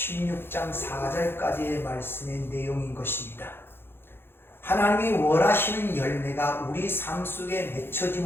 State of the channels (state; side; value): late; right; 0.11 ms